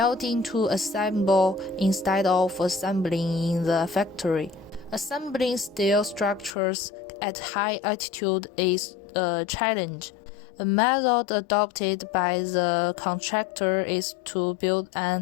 to assemble instead of assembling in the factory. Assembling steel structures at high altitude is a challenge. A method adopted by the contractor is to build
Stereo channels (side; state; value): right; drops out; at 6.5 s